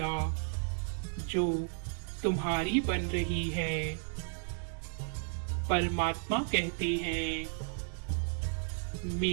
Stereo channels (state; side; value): silent; left; 55 dB below the other